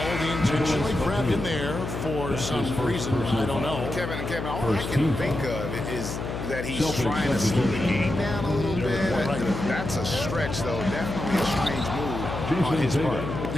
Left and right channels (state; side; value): noise; left; hum, 5 dB below the sound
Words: He intentionally grabbed him there for some reason. I don't know. Kevin, all I can think of is that he's trying to slow the game down a little bit. That's a stretch, though. Definitely a strange move on his part.